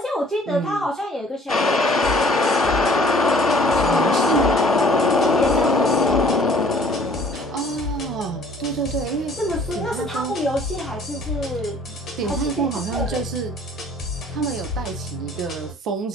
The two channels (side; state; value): both; normal; correlation 0.55